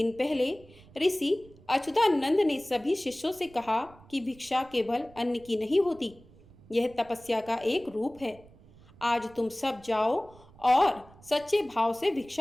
पहले ऋषि अच्युतानंद ने सभी शिष्यों से कहा कि भिक्षा केवल अन्न की नहीं होती, यह तपस्या का एक रूप है। आज तुम सब जाओ और सच्चे भाव से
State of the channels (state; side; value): noise; right; rumble, 24 dB below the sound